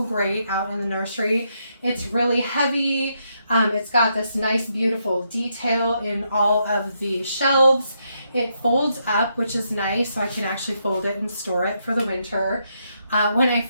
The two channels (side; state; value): both; inverted; correlation -0.79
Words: great out in the nursery. It's really heavy. It's got this nice, beautiful detail in all of the shelves. It folds up, which is nice, so I can actually fold it and store it for the winter. When I